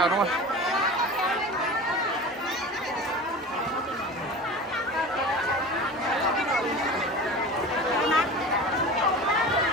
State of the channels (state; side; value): normal; both; correlation 0.34